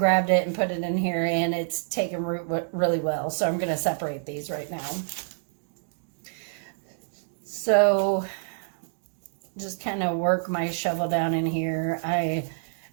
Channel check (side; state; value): left; silent; digital silence